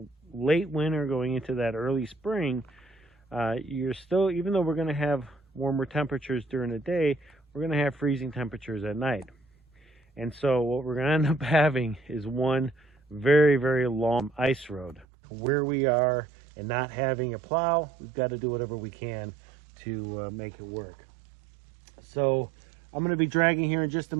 late winter going into that early spring, you're still, even though we're going to have warmer temperatures during the day, we're going to have freezing temperatures at night. And so what we're going to end up having is one very, very long ice road. Where we are and not having a plow, we've got to do whatever we can to make it work. So I'm going to be dragging here in just a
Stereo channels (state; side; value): drops out; left; at 15.1 s